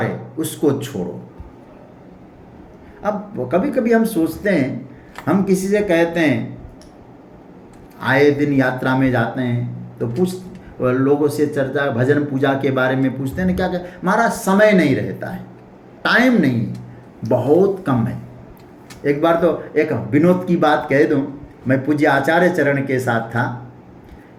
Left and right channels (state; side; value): identical; both; correlation 1.00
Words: है उसको छोड़ो। अब कभी कभी हम सोचते हैं, हम किसी से कहते हैं, आए दिन यात्रा में जाते हैं तो लोगों से चर्चा, भजन पूजा के बारे में पूछते हैं, क्या हमारा समय नहीं रहता है, टाइम नहीं, बहुत कम है। एक बार तो एक विनोद की बात कह दूं, मैं पूज्य आचार्य चरण के साथ था,